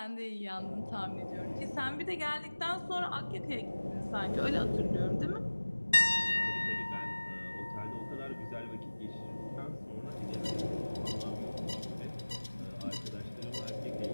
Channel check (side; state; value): both; inverted; correlation -1.00